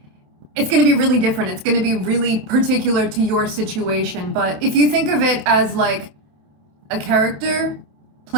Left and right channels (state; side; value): late; left; 27 ms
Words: it's going to be really different. It's going to be really particular to your situation. But if you think of it as like a character